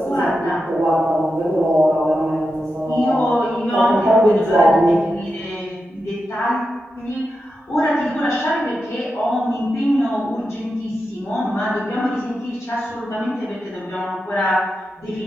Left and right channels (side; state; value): both; normal; correlation 0.89